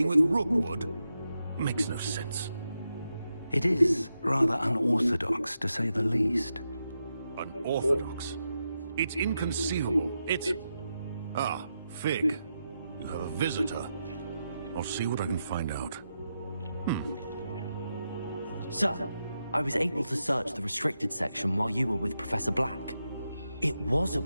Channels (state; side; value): inverted; both; correlation -0.87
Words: with Rookwood makes no sense. It is rather unorthodox, to say the least. Unorthodox? It's inconceivable. It's... Ah, Fig. You have a visitor. I'll see what I can find out. Sir, I was able to search the restricted section while you were with Professor Black. It was a